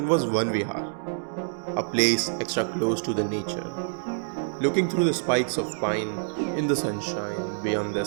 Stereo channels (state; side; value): silent; left; digital silence